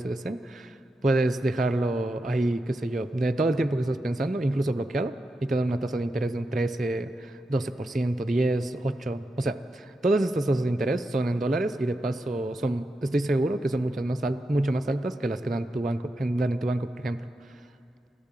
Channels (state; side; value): normal; both; correlation 0.87